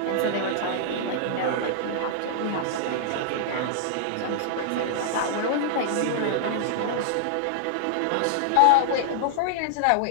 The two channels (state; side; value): different; both; correlation -0.01